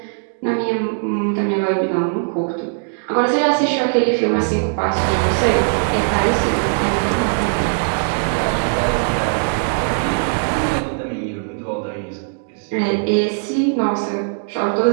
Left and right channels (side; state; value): left; silent; digital silence